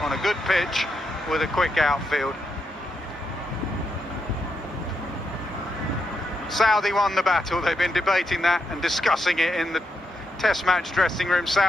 on a good pitch with a quick outfield. Southee won the battle. They've been debating that and discussing it in the Test match dressing room.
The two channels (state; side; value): normal; both; correlation 0.83